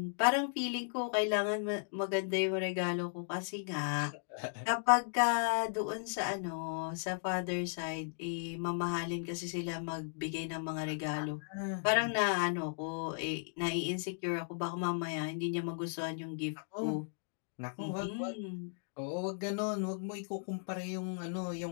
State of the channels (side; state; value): right; silent; digital silence